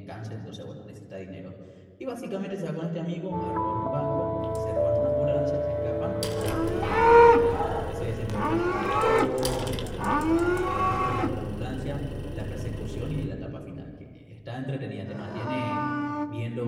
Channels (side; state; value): both; identical; correlation 1.00